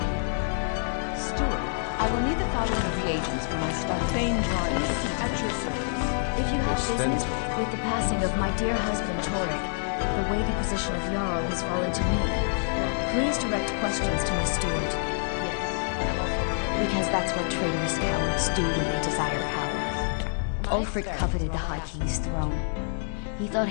Steward, I will need the following reagents for my study. Fane drawings at your service. If you have business with the passing of my dear husband Torek, the weighty position of Jarl has fallen to me. Please direct questions to my steward. Because that's what traitorous cowards do when they desire power. Ulfric coveted the High King's throne. He thought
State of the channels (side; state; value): right; silent; digital silence